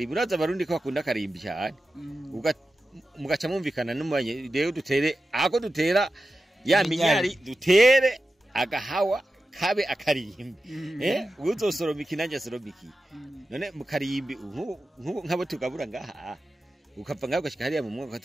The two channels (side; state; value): both; normal; correlation 0.92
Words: uraza abarundi ko bakunda karimbi cyane mugaca mumvikana n'umanye rero dutere ako dutera ya minyari dutere agahawa kabe akarimbi. Uzosoroma ikinanja soromiki. None mu karimbi nk'abo tugabura ngaha ukapfa ngaho gashika hariya mu mwonga